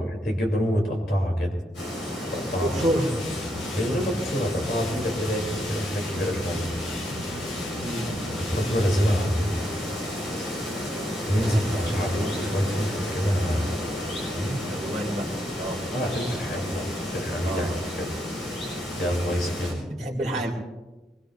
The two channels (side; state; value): both; normal; correlation 0.79